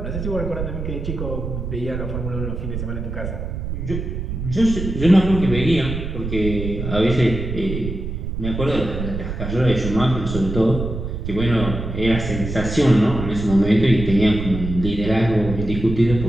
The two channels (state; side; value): noise; right; rumble, 5 dB below the sound